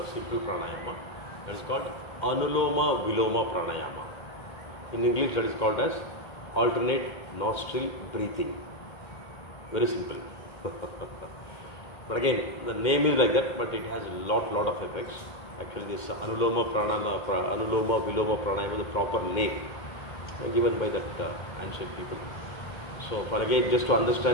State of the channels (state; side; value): late; right; 2.1 ms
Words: simple pranayama. That is called Anuloma Viloma Pranayama. In English that is called as alternate nostril breathing. Very simple. But again, the name is like that, but it has a lot of effects. Actually, this Anuloma Viloma Pranayama is the proper name given by that ancient people. So, for again, just to